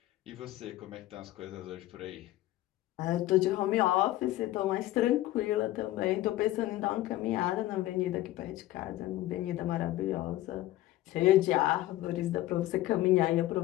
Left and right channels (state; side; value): quieter; right; 15.8 dB